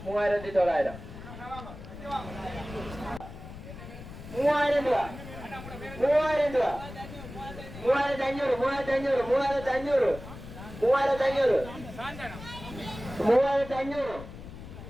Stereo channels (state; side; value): noise; left; rumble, 13 dB below the sound